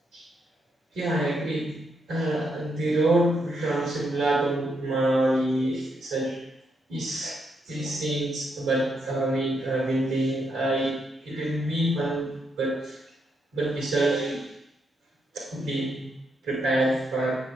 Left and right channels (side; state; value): both; normal; correlation 0.79